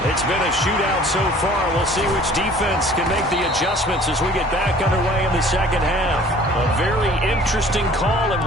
It's been a shootout so far. We'll see which defense can make the adjustments as we get back underway in the second half. A very interesting call and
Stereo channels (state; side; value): normal; both; correlation 0.51